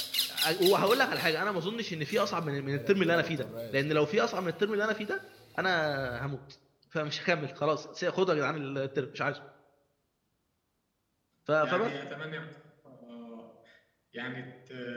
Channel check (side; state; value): both; identical; correlation 1.00